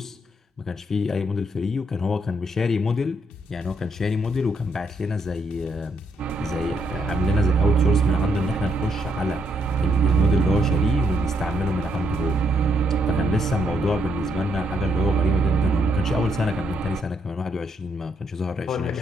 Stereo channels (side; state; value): both; normal; correlation 0.75